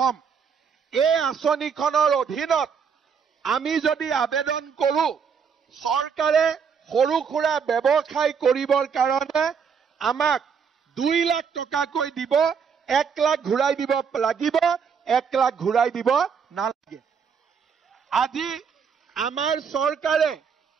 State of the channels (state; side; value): quieter; left; 6.5 dB